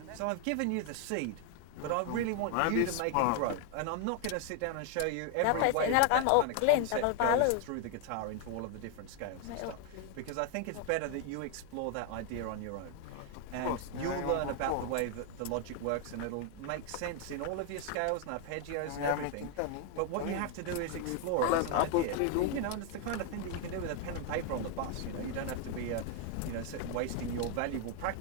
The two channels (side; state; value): both; different; correlation 0.00